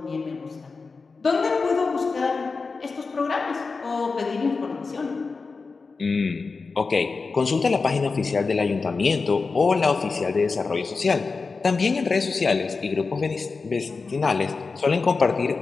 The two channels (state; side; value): quieter; right; 4.4 dB